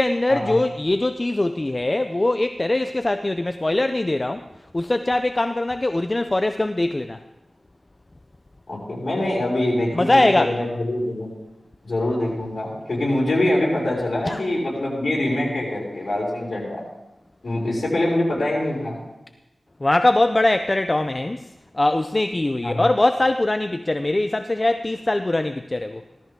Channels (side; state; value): both; normal; correlation 0.98